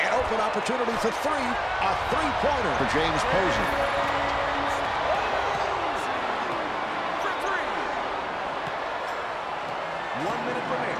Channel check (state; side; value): identical; both; correlation 1.00